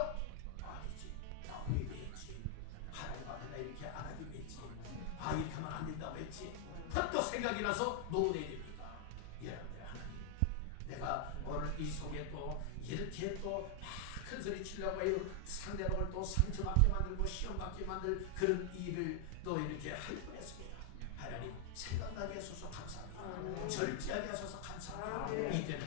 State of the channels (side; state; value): both; different; correlation 0.00